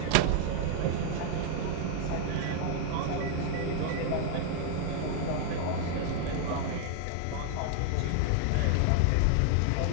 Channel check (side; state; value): both; different; correlation 0.00